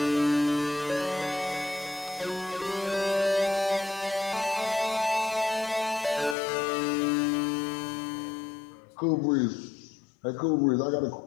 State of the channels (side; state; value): right; drops out; at 6.4 s